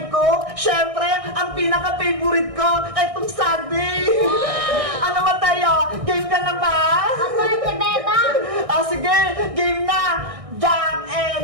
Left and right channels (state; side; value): late; left; 1.6 ms